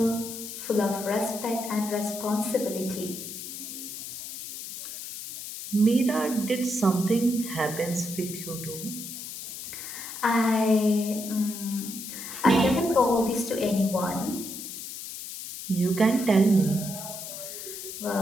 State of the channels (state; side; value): noise; left; hiss, 9 dB below the sound